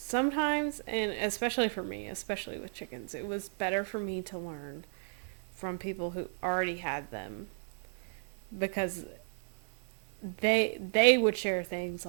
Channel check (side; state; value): left; silent; digital silence